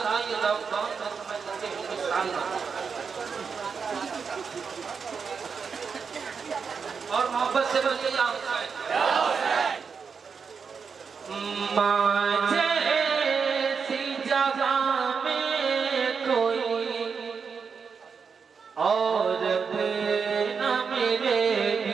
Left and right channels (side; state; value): left; quieter; 5.8 dB